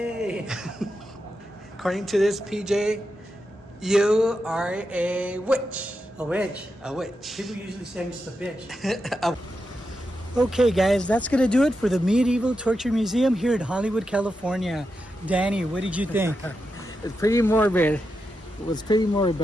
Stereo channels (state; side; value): normal; both; correlation 0.87